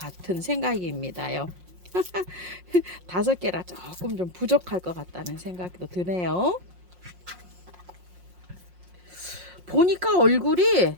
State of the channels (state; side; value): late; left; 5.6 ms